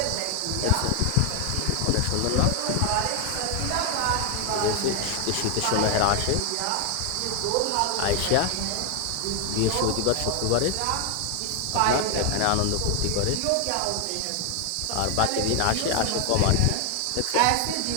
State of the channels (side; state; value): both; different; correlation 0.00